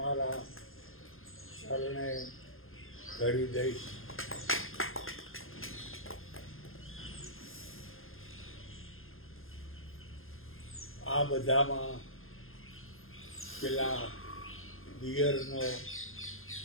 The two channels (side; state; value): right; late; 0.60 ms